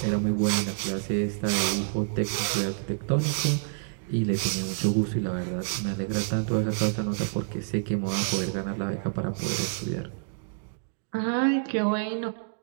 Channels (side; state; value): left; silent; digital silence